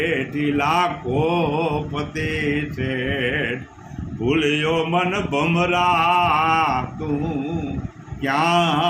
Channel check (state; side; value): identical; both; correlation 1.00